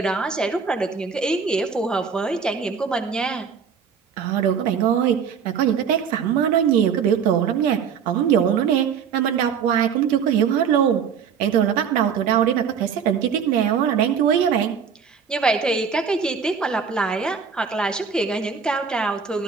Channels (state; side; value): quieter; left; 6.8 dB